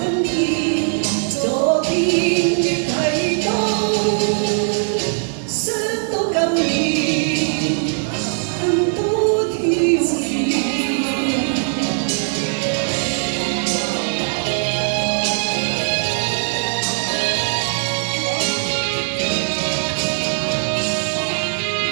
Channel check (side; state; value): left; silent; 56 dB below the other